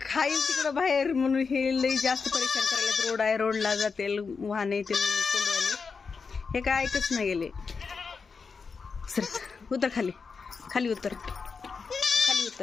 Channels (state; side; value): quieter; right; 5.1 dB